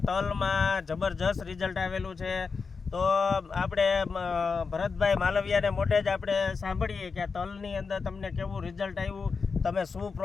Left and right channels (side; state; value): right; quieter; 5.0 dB